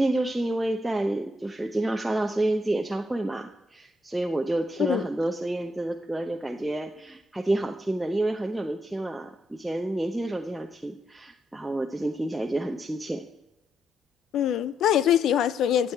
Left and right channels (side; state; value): both; normal; correlation 0.79